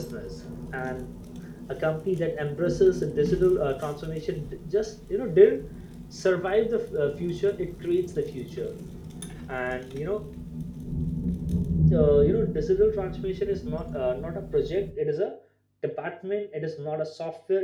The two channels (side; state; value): both; identical; correlation 1.00